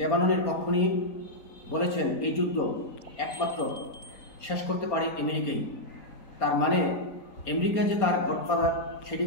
পক্ষ নিয়ে বলেছেন, এই যুদ্ধ একমাত্র শেষ করতে পারে আমেরিকাই। তার মানে আমেরিকা যে তার গডফাদার সেটি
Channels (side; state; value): right; late; 4.3 ms